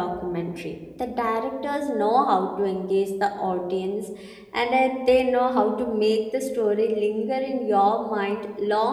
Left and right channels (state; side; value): identical; both; correlation 1.00